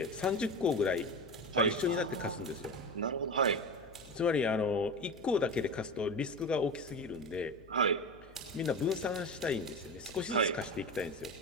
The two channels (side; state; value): left; noise; hum, 23 dB below the sound